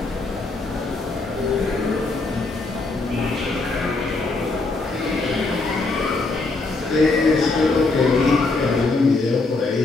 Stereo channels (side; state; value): right; quieter; 3.5 dB